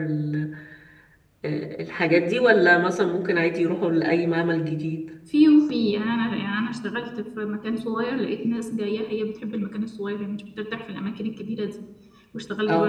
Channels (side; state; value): both; identical; correlation 1.00